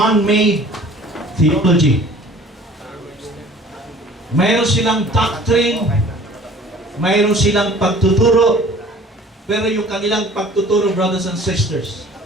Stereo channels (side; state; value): both; normal; correlation 0.49